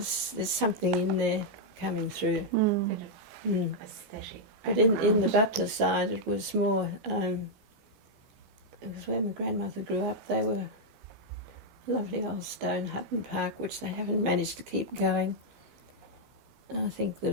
something in there coming through. Bit of aesthetic. But in the Butler side, it was more, it was where my grandmother grew up. They were a lovely old stone Hutton Park, which they haven't managed to keep going. I think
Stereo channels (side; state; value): both; normal; correlation -0.03